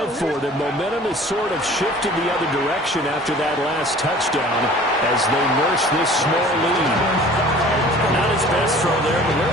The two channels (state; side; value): normal; both; correlation 0.47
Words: for them. Momentum has sort of shifted the other direction after that last touchdown as they nurse this small lead. Not his best throw there, but where